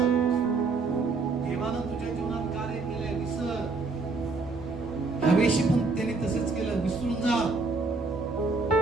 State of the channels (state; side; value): quieter; left; 3.9 dB